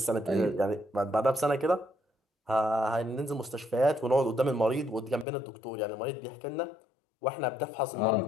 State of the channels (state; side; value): drops out; right; at 5.2 s